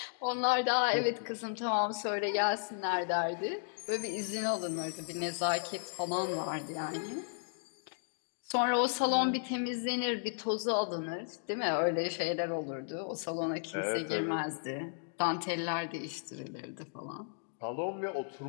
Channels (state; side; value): silent; right; digital silence